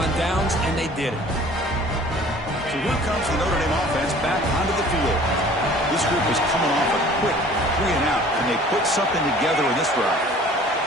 downs, and they did it. So here comes the Notre Dame offense back onto the field. This group is coming off a quick 3 and out, and they put something together in this drive.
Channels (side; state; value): both; normal; correlation 0.49